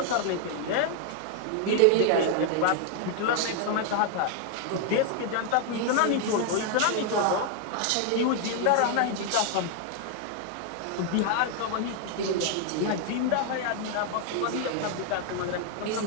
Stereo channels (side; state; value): both; different; correlation 0.00